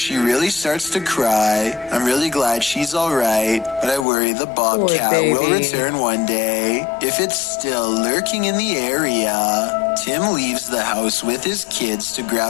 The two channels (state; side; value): drops out; right; at 4.0 s